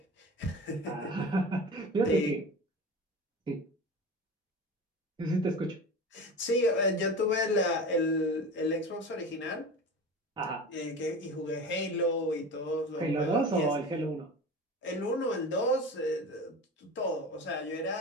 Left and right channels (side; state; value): both; normal; correlation 0.32